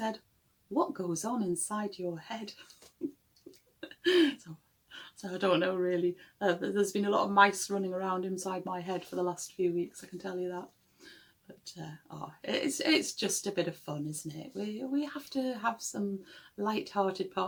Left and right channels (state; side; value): identical; both; correlation 1.00